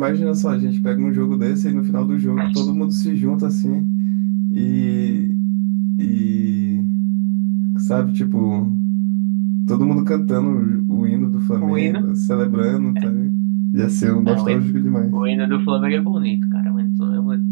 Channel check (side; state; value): left; silent; digital silence